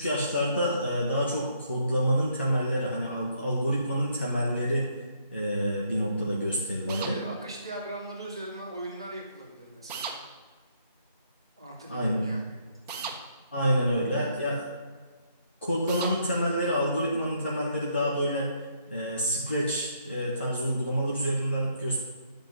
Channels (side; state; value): both; inverted; correlation -0.70